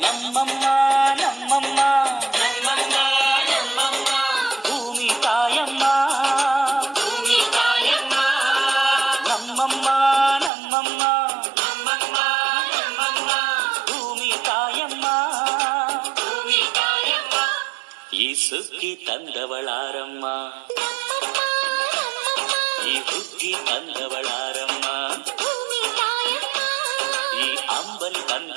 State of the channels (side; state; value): left; drops out; at 10.5 s